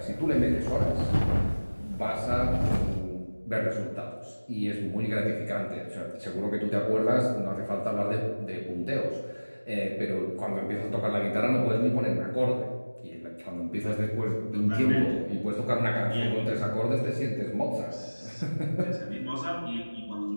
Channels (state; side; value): inverted; both; correlation -1.00